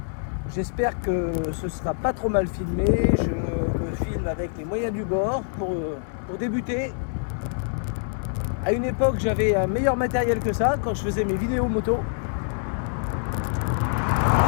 J'espère que ce sera pas trop mal filmé. Je me filme avec les moyens du bord pour débuter. À une époque, j'avais un meilleur matériel que ça quand je faisais mes vidéos moto.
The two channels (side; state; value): right; silent; digital silence